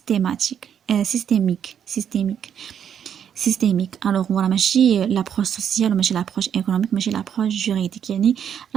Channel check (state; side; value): quieter; left; 8.6 dB